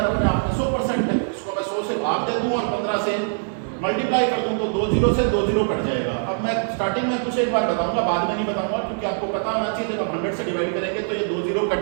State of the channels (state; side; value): silent; left; digital silence